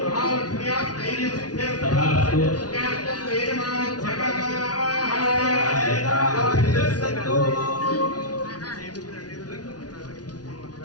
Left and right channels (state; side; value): late; right; 0.69 ms